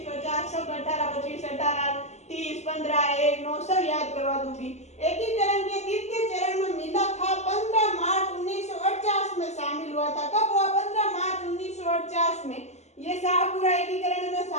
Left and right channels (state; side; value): late; right; 0.33 ms